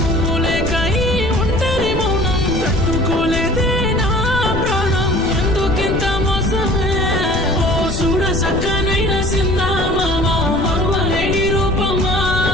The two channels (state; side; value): noise; left; rumble, 5 dB below the sound